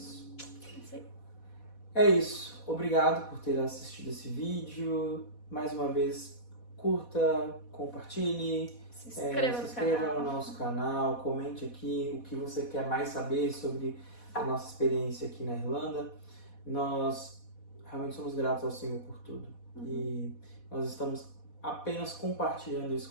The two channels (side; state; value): right; late; 4.1 ms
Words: É isso. Obrigado por ter assistido esse vídeo. Mais uma vez, curta, compartilhe, se inscreva no nosso canal, comente aqui o que você quer mais saber sobre a nossa experiência aqui na Irlanda. Nós realmente somos gratos ao Senhor por tudo. E nós estamos apenas compartilhando isso